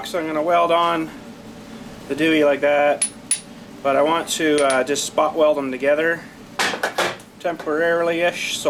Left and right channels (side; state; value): both; identical; correlation 1.00